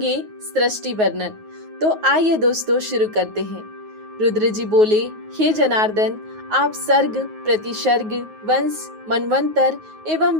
सृष्टि वर्णन। तो आइए दोस्तों शुरू करते हैं। रुद्र जी बोले, हे जनार्दन, आप सर्ग, प्रतिसर्ग, वंश, मनवंतर एवं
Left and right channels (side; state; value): left; late; 9.4 ms